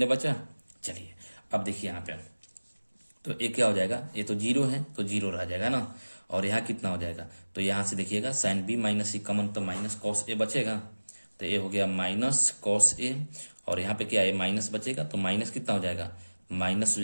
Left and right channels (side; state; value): both; inverted; correlation -1.00